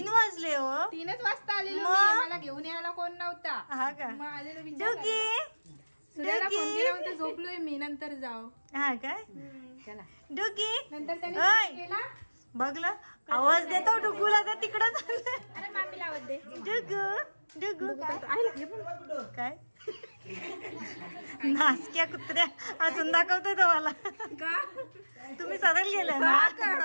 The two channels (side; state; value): both; inverted; correlation -1.00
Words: वाजले हो. 3च वाजता आलेलो मी. मला घेऊन यायला कोण नव्हता. हा का? मग आलेलो डुगी सूर्याला फोन केला होता, झोपलोय मी, नंतर जाऊ. हा काय? चला. डुगी नंतर त्याने ओय. फोन केला. बघलं आवाज देतो डुगूला तर तिकडं चाललं. अरे मामीला आवाज दे. डुगू डुगू काय नासक्या कुत्र्या अजून दाखवतोय तुम्हाला. तुम्ही सरळ गेलाय ना